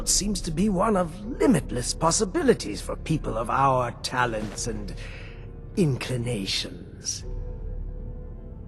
seems to be one of limitless possibilities for people of our talents and inclinations.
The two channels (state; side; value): identical; both; correlation 1.00